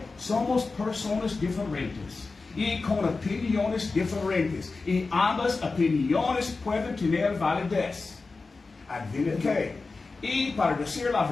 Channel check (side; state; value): right; quieter; 3.9 dB